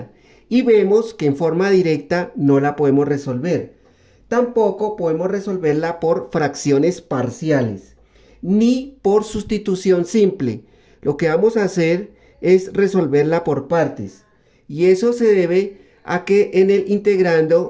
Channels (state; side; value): identical; both; correlation 1.00